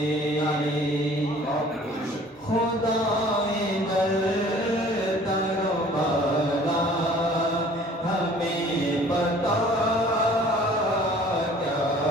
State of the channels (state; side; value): normal; both; correlation 0.51